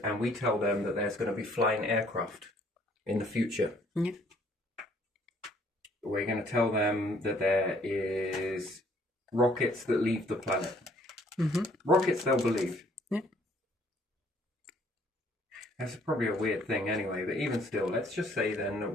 we tell them that there's going to be flying aircraft in the future. Yeah. We're going to tell them that there is rockets that leave the planet. Mm-hmm. Rockets they'll believe. Yeah. That's probably a weird thing anyway, but even still, let's just say then that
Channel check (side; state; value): both; normal; correlation 0.62